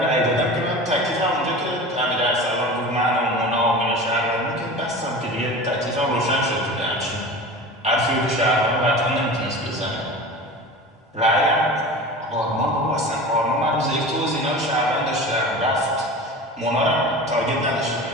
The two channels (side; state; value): both; normal; correlation 0.34